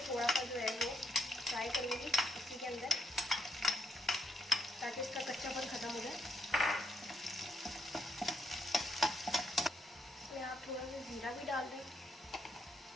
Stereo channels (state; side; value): normal; both; correlation 0.76